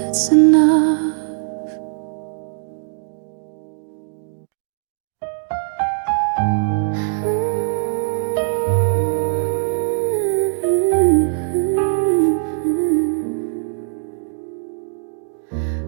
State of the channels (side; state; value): left; silent; digital silence